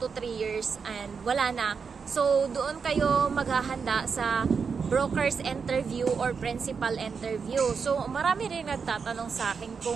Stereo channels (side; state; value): left; quieter; 5.7 dB